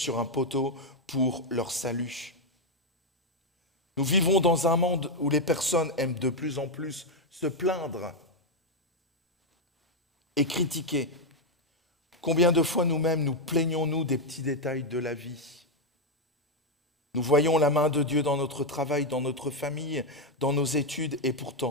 un poteau pour leur salut. Nous vivons dans un monde où les personnes aiment de plus en plus se plaindre et critiquer. Combien de fois nous-mêmes nous plaignons-nous des petits détails de la vie? Nous voyons la main de Dieu dans notre travail, dans notre famille, dans nos études, et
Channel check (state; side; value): normal; both; correlation 0.02